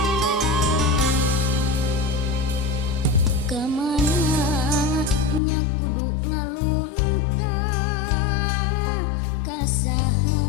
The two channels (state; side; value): drops out; right; at 5.4 s